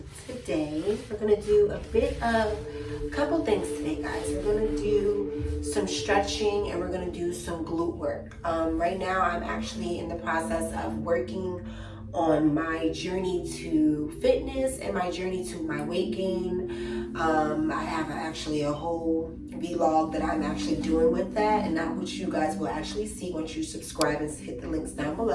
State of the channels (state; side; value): identical; both; correlation 1.00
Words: today we're going to do a couple things today, guys. We're going to do some stretching and we're going to do some glute work. Right now I'm actually in the process of working on my journey to fitness and my journey to my weight gain. I have actually a whole vlog that I'm actually doing with that, and that which you guys will actually see once you subscribe and hit the links down